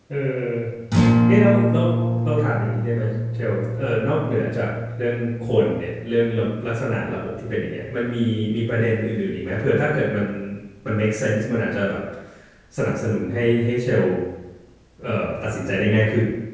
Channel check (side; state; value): both; identical; correlation 1.00